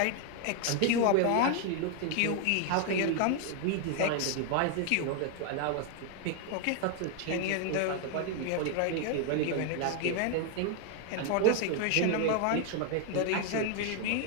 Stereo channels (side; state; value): both; different; correlation 0.01